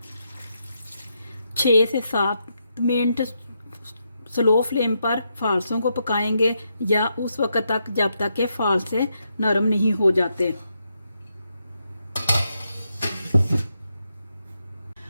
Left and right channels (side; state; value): both; inverted; correlation -0.82